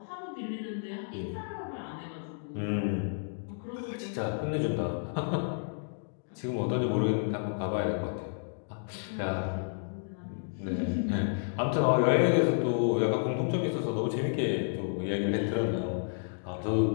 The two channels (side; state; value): right; silent; digital silence